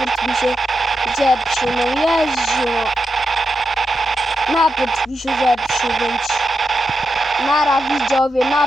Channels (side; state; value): both; normal; correlation 0.87